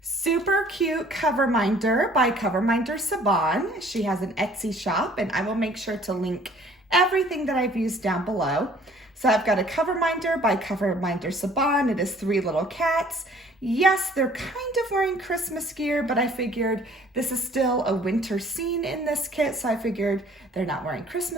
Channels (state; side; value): normal; both; correlation 0.56